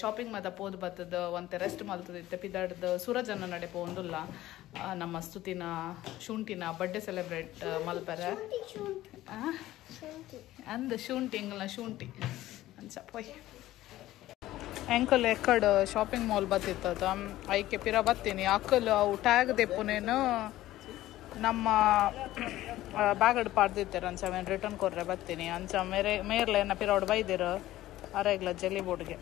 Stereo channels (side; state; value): right; quieter; 15.3 dB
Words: ಶಾಪಿಂಗ್ ಮಾತ ಪೋದು ಬತ್ತದ ಒಂತೆ ರೆಸ್ಟ್ ಮಲ್ತದಿತ್ತೆ ಪಿದಾಡ್ದು ಸೂರಜನ್ನ ನಡೆ ಪೋಂದುಲ್ಲ ನಮ್ಮ ಸ್ತುತಿನ ಶುಂಠಿನ ಬರ್ಡೇ ಸೆಲೆಬ್ರೇಟ್ ಮಲ್ಪರ ಅಂದ ಶುಂಠಿ ಎಂಗಲ್ನ ಶುಂಠಿ ಅಂಚ ಪೊಯ್ ಎಂಕಲ್ ಎಕ್ಕಡ್ ಶಾಪಿಂಗ್ ಮಾಲ್ ಬತ್ತಿತ್ತದ ಐಕೆ ಪಿರ ಬತ್ತೀನಿ ಅಕ್ಕಲ್ ಅವು ಟ್ಯಾಗ್ ದೆಪ್ಪುನೇನು ನಮ್ಮ ಬ್ಯಾಗಡ್ ಪಾಡ್ದಿತ್ತಾರೆ ಅಂಚ ಅವೇನು ರಿಟರ್ನ್ ಕೊರ್ರೆ ಬರ್ತೀನಿ ಅಂಚ ಮೇರ್ಲೆ ಏನ ಪಿರೋಡ್ ಬೈದಿರು ಅರೆಗ್ಲ ಜೆಲ್ಲಿ ಬೋರ್ಡ್ಗೆ